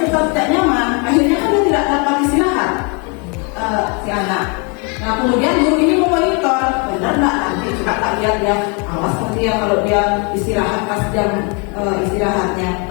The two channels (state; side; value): quieter; right; 33.4 dB